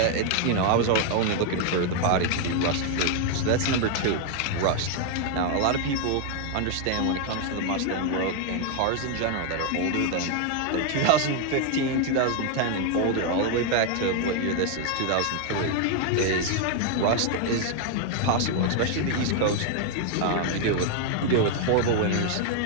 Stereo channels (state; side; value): different; both; correlation 0.01